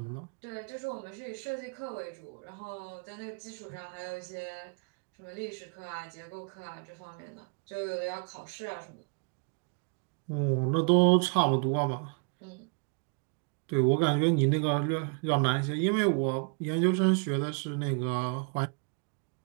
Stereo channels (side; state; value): left; quieter; 38.5 dB